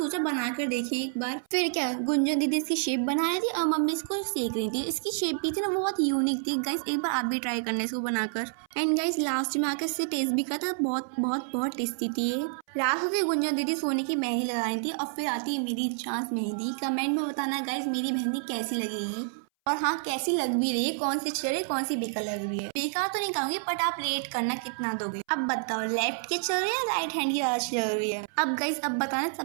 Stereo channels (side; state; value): left; silent; 59 dB below the other